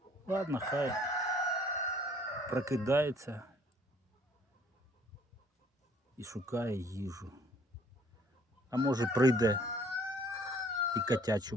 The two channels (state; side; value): normal; both; correlation 0.59